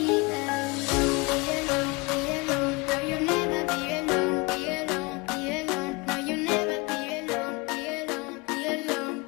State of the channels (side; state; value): right; quieter; 26.6 dB